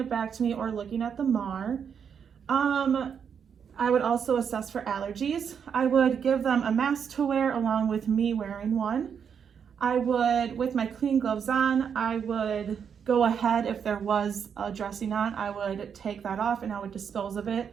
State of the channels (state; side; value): quieter; left; 7.3 dB